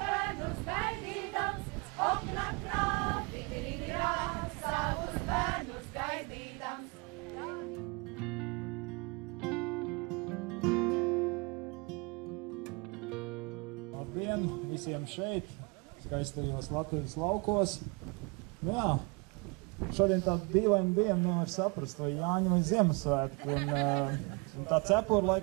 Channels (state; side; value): quieter; left; 29.5 dB